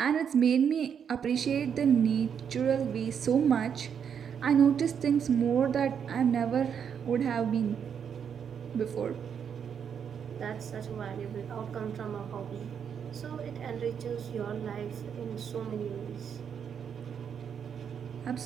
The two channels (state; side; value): quieter; left; 7.6 dB